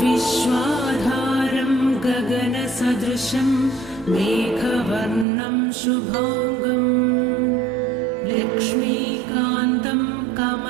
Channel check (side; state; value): left; drops out; at 5.2 s